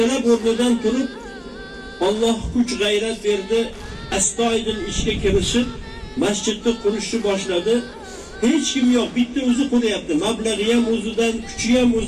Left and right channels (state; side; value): identical; both; correlation 1.00